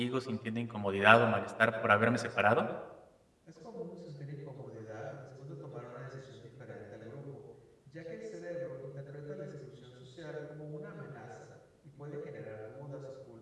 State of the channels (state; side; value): identical; both; correlation 1.00